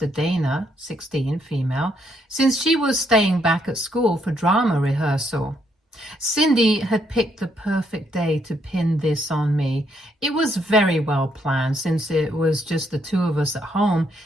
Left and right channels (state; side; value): normal; both; correlation 0.74